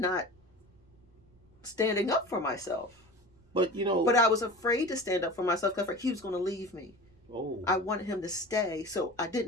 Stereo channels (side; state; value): right; noise; rumble, 30 dB below the sound